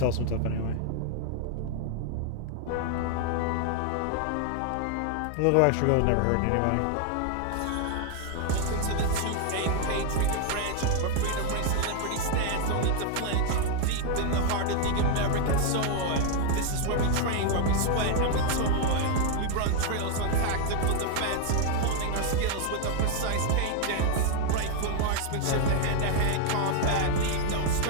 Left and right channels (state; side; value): different; both; correlation 0.00